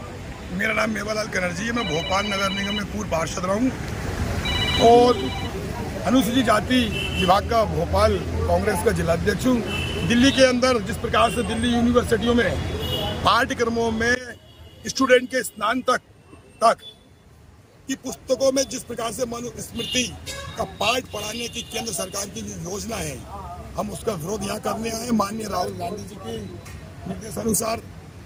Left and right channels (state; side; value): identical; both; correlation 1.00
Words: मेरा नाम मेवालाल बनर्जी है। मैं भोपाल नगर निगम में पूर्व पार्षद रहा हूँ और अनुसूचित जाति विभाग का भोपाल कांग्रेस का जिलाध्यक्ष हूँ। दिल्ली के अंदर जिस प्रकार से दिल्ली यूनिवर्सिटियों में पाठ्यक्रमों में स्टूडेंट के स्नातक की पुस्तकों में जिस प्रकार से मनुस्मृति का पाठ पढ़ाने की केंद्र सरकार की जो योजना है, हम उसका विरोध यहाँ करने आए। माननीय राहुल गांधी जी के निर्देशानुसार,